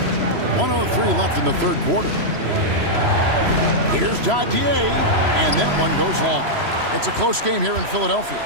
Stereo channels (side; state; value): left; late; 3.0 ms